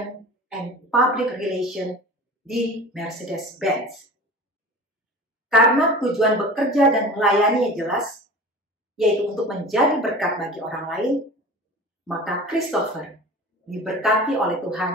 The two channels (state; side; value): normal; both; correlation 0.37